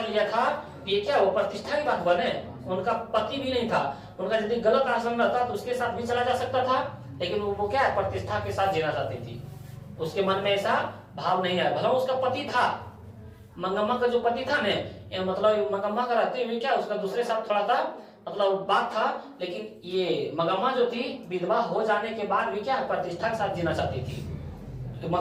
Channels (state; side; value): identical; both; correlation 1.00